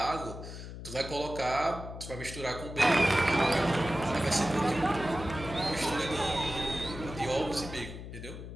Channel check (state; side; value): noise; left; hum, 10 dB below the sound